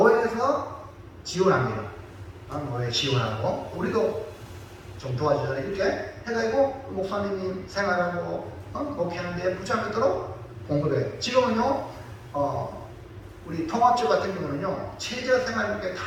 지원합니다. 노예 지원하고 우리도 좀 도와주잖아요. 이렇게 해가지고 목사님이 생활하고 목회하는 데 부착하도록 공급해요. 지금은요 우리 통합적 같은 경우는요 최저 생활비에 다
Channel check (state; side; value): identical; both; correlation 1.00